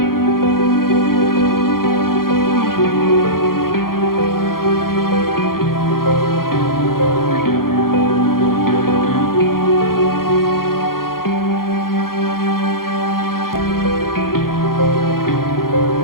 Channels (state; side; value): late; right; 0.92 ms